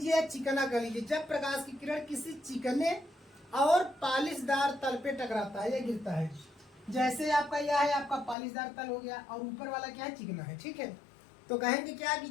चिकना कह लीजिए, जब प्रकाश की किरण किसी चिकने और पालिशदार तल पे टकराता है या गिरता है। जैसे आपका यह है, आपका पालिशदार तल हो गया और ऊपर वाला क्या है, चिकना है। ठीक है, तो कहेंगे क्या कि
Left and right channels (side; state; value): right; drops out; at 8.3 s